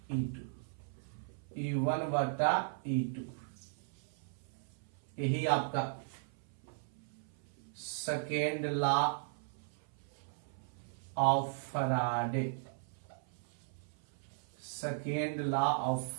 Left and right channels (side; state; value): left; silent; 53 dB below the other